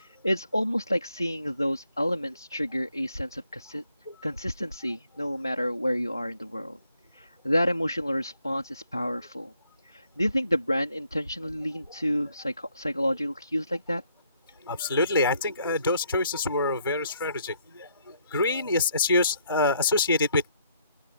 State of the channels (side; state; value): both; inverted; correlation -0.70